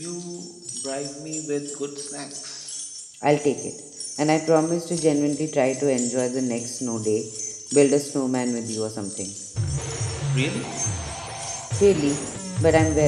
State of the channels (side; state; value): both; identical; correlation 1.00